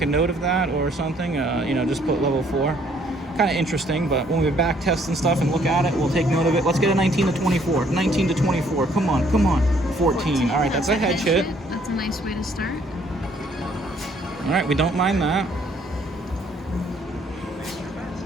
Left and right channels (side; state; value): both; normal; correlation 0.64